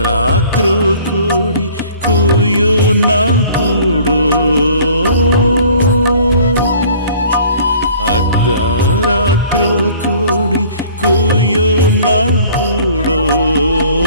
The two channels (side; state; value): both; inverted; correlation -0.52